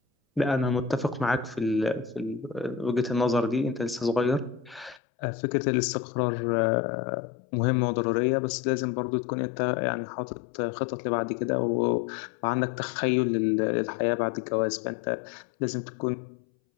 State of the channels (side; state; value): right; drops out; at 5.0 s